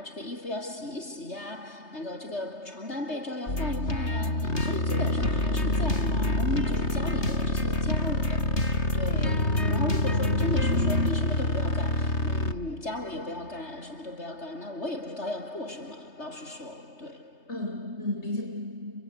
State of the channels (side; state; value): right; late; 3.3 ms